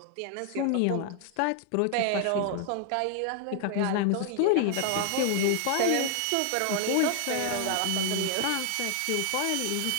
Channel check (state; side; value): different; both; correlation 0.00